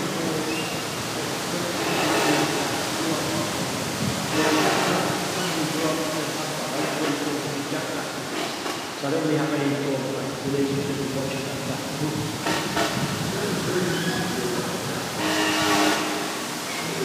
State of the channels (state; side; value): identical; both; correlation 1.00